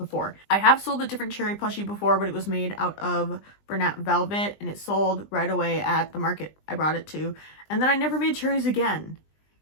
I have sold a different cherry plushie before, but it was made out of Bernat Velvet and it sold right away at the market I brought it to. And then I never made cherries again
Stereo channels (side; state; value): right; late; 20 ms